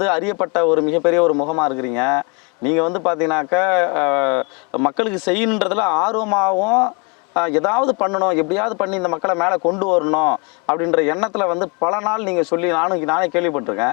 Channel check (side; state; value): right; quieter; 31.9 dB